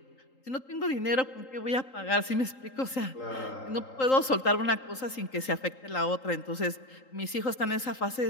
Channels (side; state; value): right; late; 3.8 ms